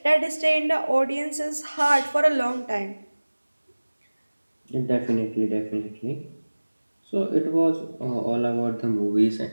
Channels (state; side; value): inverted; both; correlation -1.00